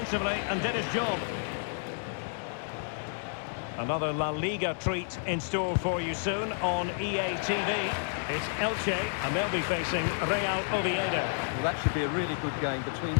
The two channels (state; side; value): silent; right; 57 dB below the other